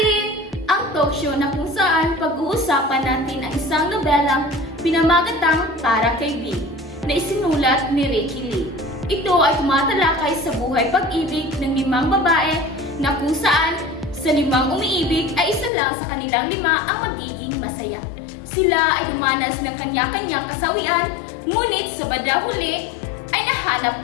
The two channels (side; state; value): right; drops out; at 15.7 s